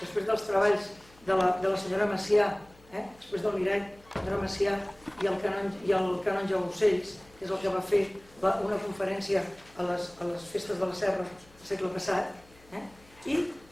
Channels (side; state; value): left; noise; hum, 27 dB below the sound